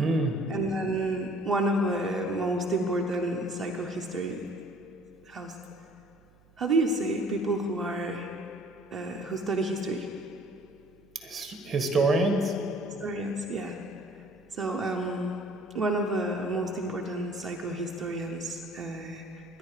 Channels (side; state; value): right; noise; hum, 29 dB below the sound